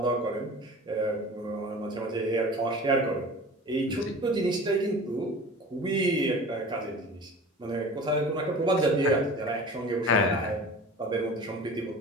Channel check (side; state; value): both; normal; correlation 0.39